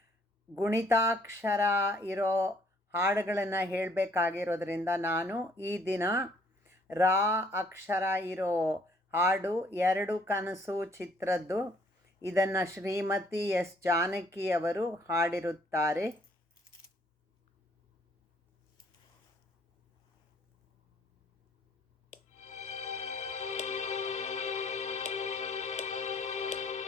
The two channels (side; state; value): both; normal; correlation 0.63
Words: ಗುಣಿತಾಕ್ಷರ ಇರೋ ಹಾಡುಗಳನ್ನು ಹೇಳಬೇಕಾಗಿರೋದ್ರಿಂದ ನಾನು ಈ ದಿನ ರಾ ಅಕ್ಷರ ಇರೋ ಹಾಡು ಎರಡು ಕನಸು ಚಿತ್ರದ್ದು ಇದನ್ನು ಶ್ರೀಮತಿ ಎಸ್ ಜಾನಕಿ ಅವರು ಹಾಡಿರುತ್ತಾರೆ.